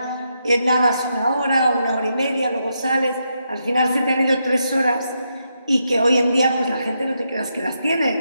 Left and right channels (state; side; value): inverted; both; correlation -0.82